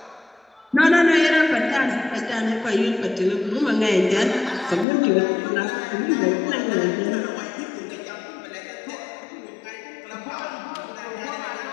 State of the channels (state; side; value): drops out; right; at 4.9 s